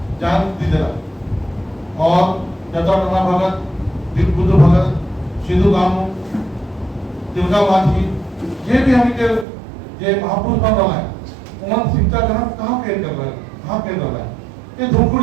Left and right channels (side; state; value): left; drops out; at 9.5 s